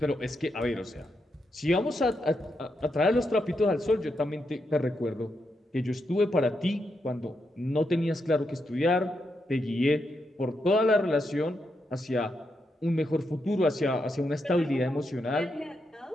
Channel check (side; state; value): both; normal; correlation 0.83